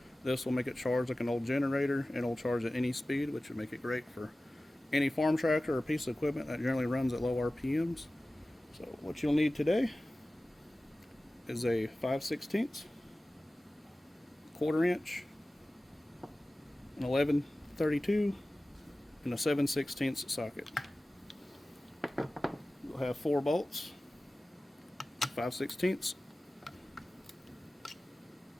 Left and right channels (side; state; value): both; normal; correlation 0.97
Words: This will make it charge like an old generator, and it'll charge at any speed, which would make it great for any farm tractor or piece of equipment that generally runs at low RPMs. So what you'll need today is a 5/16, quarter inch, an 11/32, and a 7/16 socket. You'll have 4 bolts, 5/16.